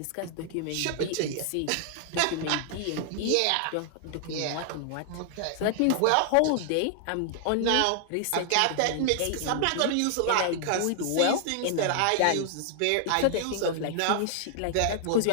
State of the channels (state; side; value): different; both; correlation 0.00